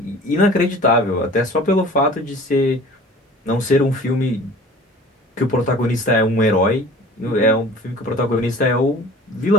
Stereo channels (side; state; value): both; normal; correlation 0.45